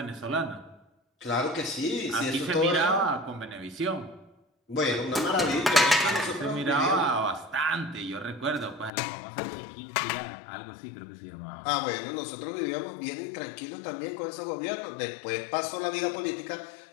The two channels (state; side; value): drops out; right; at 8.9 s